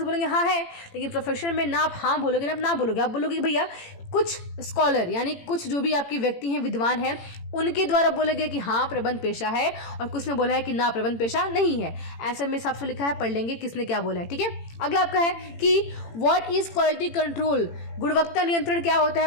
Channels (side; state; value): right; late; 18 ms